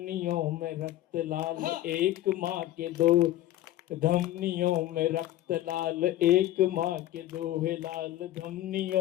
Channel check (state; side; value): quieter; right; 14.2 dB